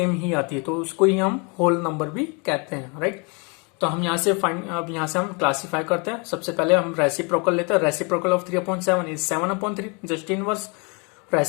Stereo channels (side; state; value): right; quieter; 32.6 dB